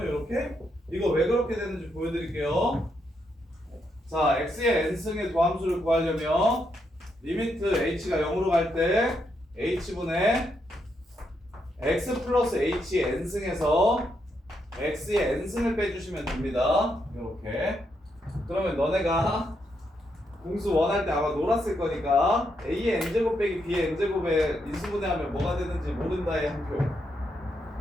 이거 왜 그렇게 되는지 보여드릴게요. 자, x의 n승의 도함수를 구하려면 리미트 h가 0으로 갈 때 h분의 x 플러스 h n승에서 x의 n승을 빼주시면 됩니다. 이렇게. 그러면 너네가 공수 원할 때 아마 놀았을 거니까 a의 n제곱 빼기 b의 n제곱에 인수분해하면 뭐가 되는지 모른다의 한 표.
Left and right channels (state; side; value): normal; both; correlation 0.80